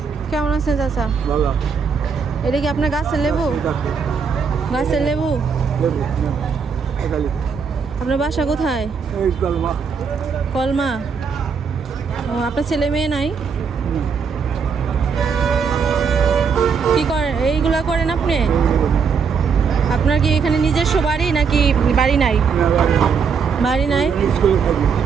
কেমন আছেন চাচা? ভালো। এটা কি আপনার গাছের লেবু? গাছের লেবু। আপনার বাসা কোথায়? এই কলমা। কলমা। ও, আপনার ছেলে মেয়ে নাই? কি করেন এইগুলা করেন আপনি? আপনার কি এখানে নিজস্ব বাড়ি নাকি বাড়ি নাই? বাড়ি নাই,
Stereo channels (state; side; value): quieter; left; 6.0 dB